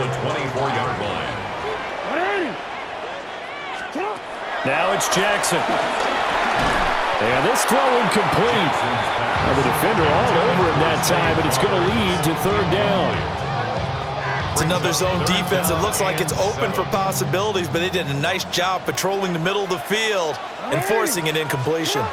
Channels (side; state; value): both; identical; correlation 1.00